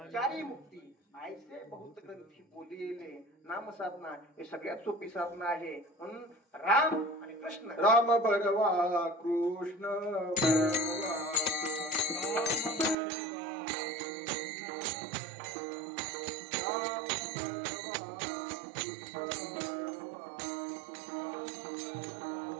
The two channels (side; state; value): left; drops out; at 13.0 s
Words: मुक्ती ऐसे बहुत ग्रंथी बोलिले. नाम साधना हे सगळ्यात सोपी साधना आहे. म्हणून राम आणि कृष्ण. राम बरवा कृष्ण बरवा.